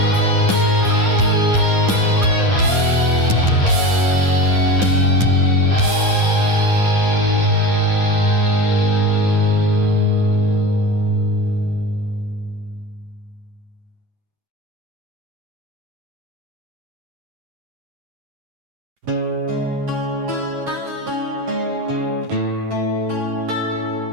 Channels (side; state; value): left; late; 9.8 ms